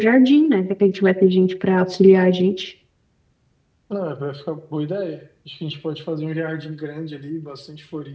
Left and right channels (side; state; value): both; identical; correlation 1.00